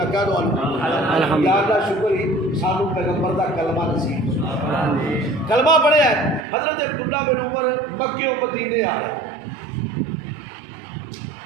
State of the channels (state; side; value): drops out; left; at 6.5 s